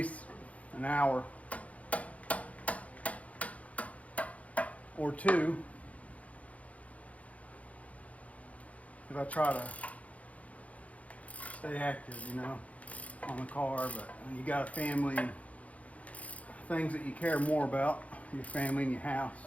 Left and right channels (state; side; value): late; right; 0.067 ms